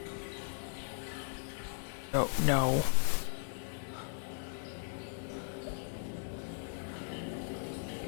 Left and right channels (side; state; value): right; silent; 53 dB below the other